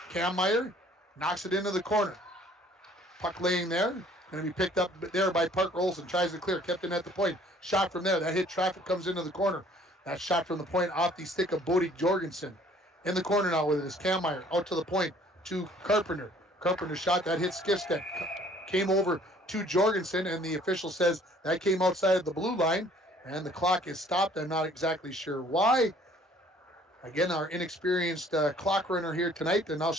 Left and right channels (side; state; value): both; normal; correlation 0.56